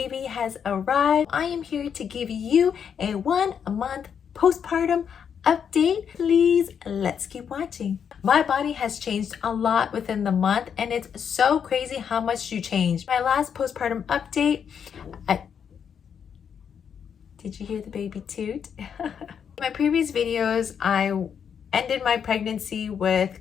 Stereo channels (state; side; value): quieter; right; 7.6 dB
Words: has arrived. I am here to give you a 1 month postpartum update. Please, let's keep watching. My body has changed a lot within the month and it's so crazy how much you change. My last postpartum update, did you hear the baby toot? In my previous videos, I ended my pregnancy